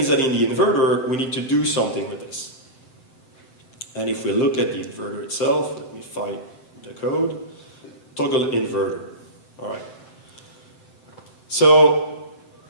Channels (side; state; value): right; late; 7.8 ms